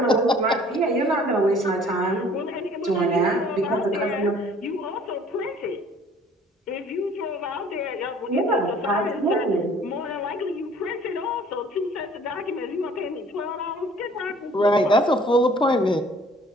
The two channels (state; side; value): normal; both; correlation 0.53